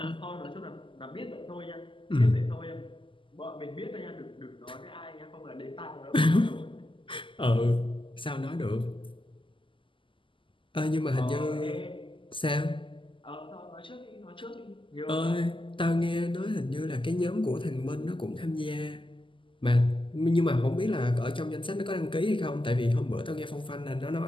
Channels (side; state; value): right; late; 0.25 ms